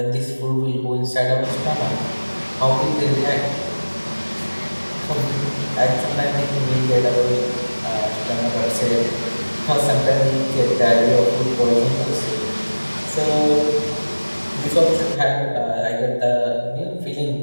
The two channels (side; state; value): both; inverted; correlation -1.00